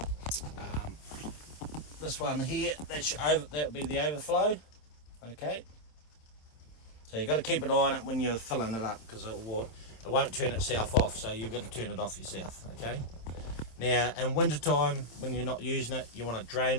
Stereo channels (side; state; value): right; late; 27 ms